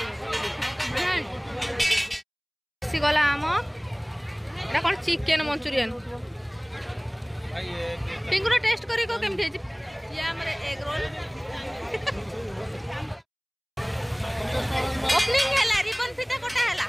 गला आम एटा कौन चिकेन मंचूरियन पिंकुर टेस्ट करी को केमथि हे ये हमर एग रोल ओपनिंग हैला रिबन फिटा कोटा हैला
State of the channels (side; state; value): both; identical; correlation 1.00